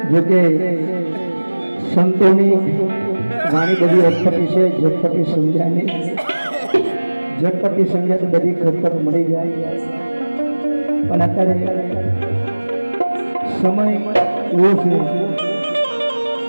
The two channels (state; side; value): inverted; both; correlation -1.00